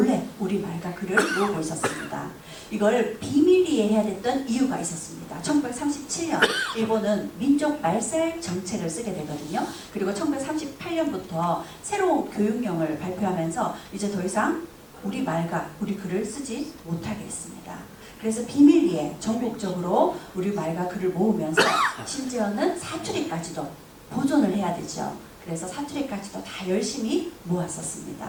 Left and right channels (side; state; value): both; identical; correlation 1.00